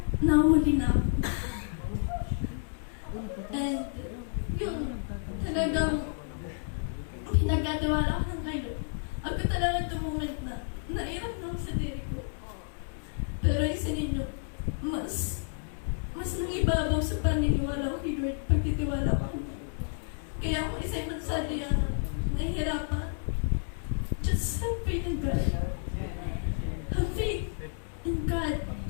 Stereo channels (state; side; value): silent; right; digital silence